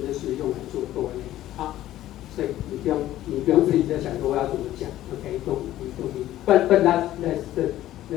就是用来做多类。好，所以你不用自己在想说我要怎么讲。OK， don't But that's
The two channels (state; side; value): quieter; right; 13.9 dB